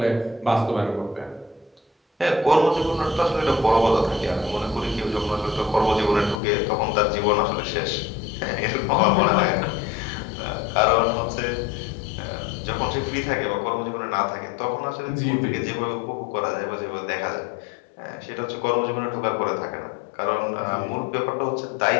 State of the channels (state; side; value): drops out; right; at 6.4 s